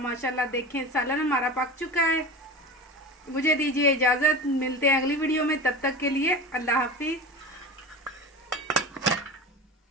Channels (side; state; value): both; normal; correlation 0.30